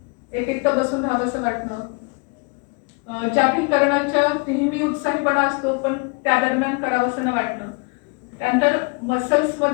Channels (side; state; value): right; quieter; 32.5 dB